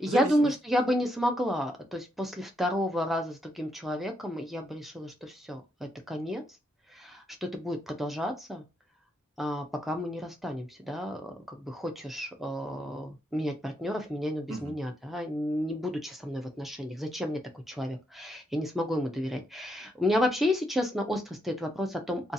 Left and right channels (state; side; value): normal; both; correlation 0.79